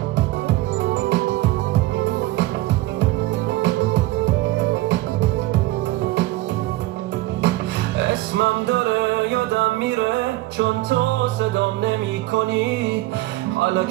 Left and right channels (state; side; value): quieter; left; 17.7 dB